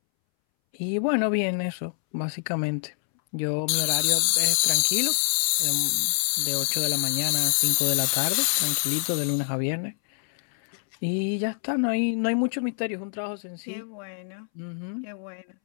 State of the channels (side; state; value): right; silent; 61 dB below the other